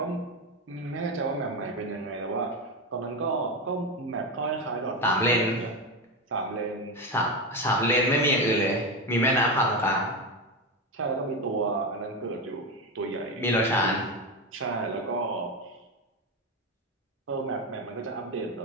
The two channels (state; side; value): normal; both; correlation 0.15